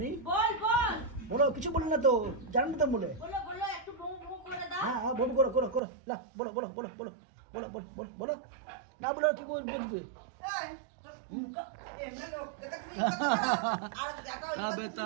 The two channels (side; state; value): left; drops out; at 5.8 s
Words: বল বল বলো কিছু বলো না তো জানেন না তো বলে বলো বলো একটু বউ বউ করে দাও হ্যাঁ হ্যাঁ বউ করো করো করো না বলো বলো বলো বলো বলো বলো বলো বলো না বলো কি বলবি তবে